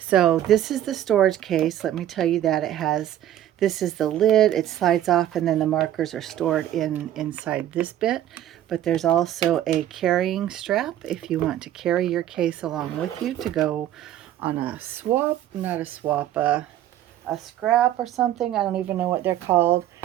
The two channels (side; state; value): left; quieter; 12.2 dB